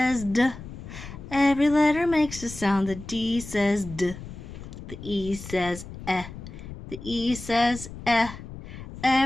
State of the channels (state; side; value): noise; left; rumble, 12 dB below the sound